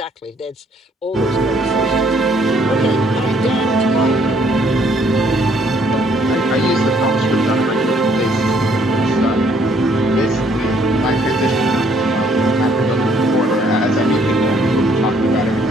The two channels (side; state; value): both; normal; correlation 0.65